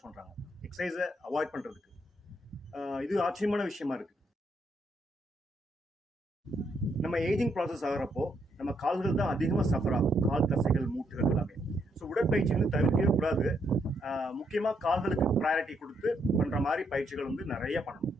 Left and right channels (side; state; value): both; normal; correlation 0.76